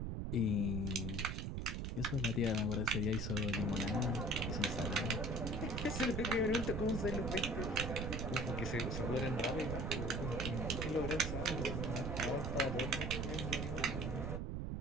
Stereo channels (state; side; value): noise; right; rumble, 2 dB below the sound